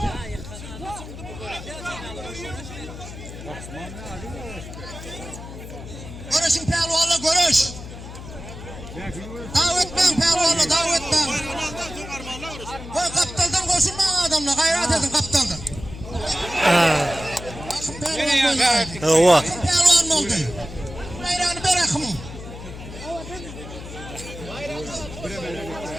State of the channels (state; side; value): noise; left; hum, 12 dB below the sound